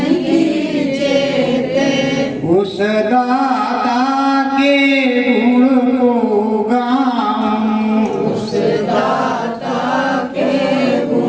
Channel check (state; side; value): identical; both; correlation 1.00